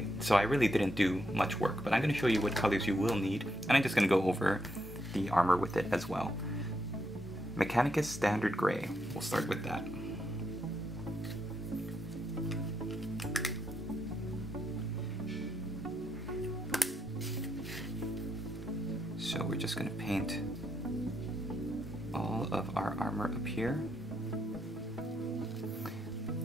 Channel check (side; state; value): both; normal; correlation 0.80